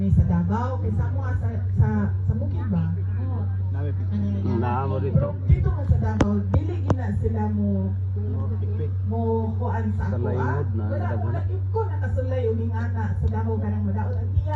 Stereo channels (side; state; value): both; identical; correlation 1.00